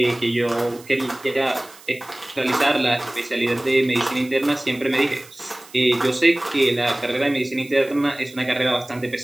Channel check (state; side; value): noise; right; hiss, 22 dB below the sound